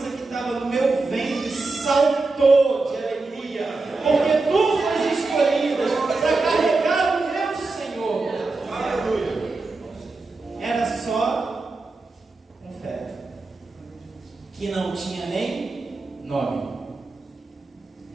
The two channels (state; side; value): quieter; left; 3.6 dB